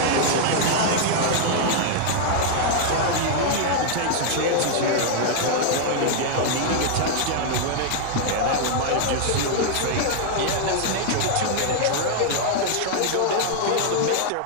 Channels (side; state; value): both; different; correlation 0.00